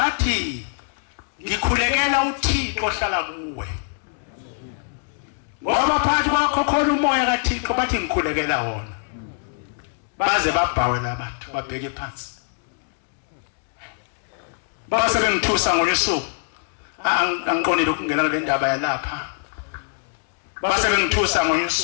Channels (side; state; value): right; silent; digital silence